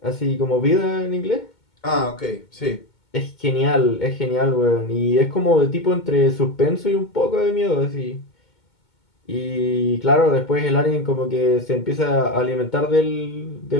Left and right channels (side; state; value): right; late; 2.2 ms